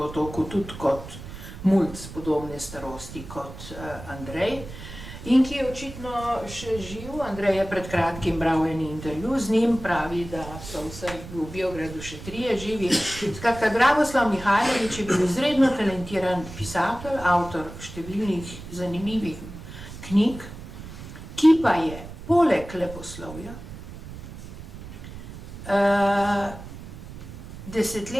tudi kot mulc podobne starosti kot Andrej, in ki je očitno še živ. Andrej je pred kratkim bral en intervju z njim, pravi, da so vsaj v Biogradu še 3 živi. Skratka, Dragoslav Mihajlović je bil izredno talentiran pisatelj, avtor številnih zanimivih knjig, ki pa je poleg leposlovja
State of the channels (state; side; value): noise; right; rumble, 13 dB below the sound